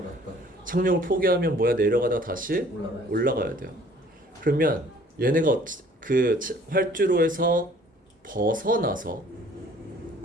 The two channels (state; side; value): normal; both; correlation 0.55